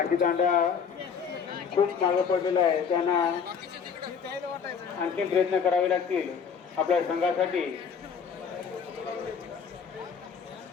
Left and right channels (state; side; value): quieter; right; 6.6 dB